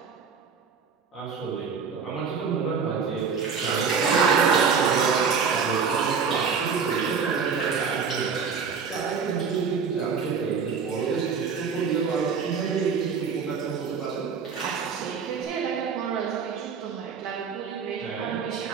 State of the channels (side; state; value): left; quieter; 5.9 dB